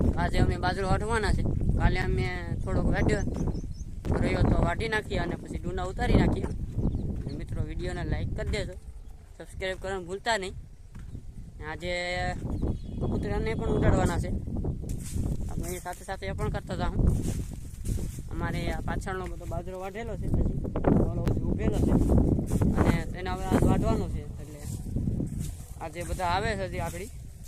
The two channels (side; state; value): both; identical; correlation 1.00